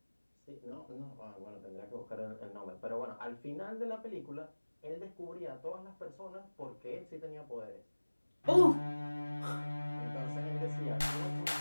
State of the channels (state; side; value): inverted; both; correlation -1.00